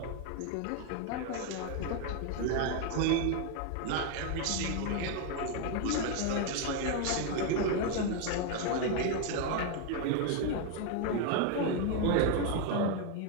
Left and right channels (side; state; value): both; different; correlation 0.01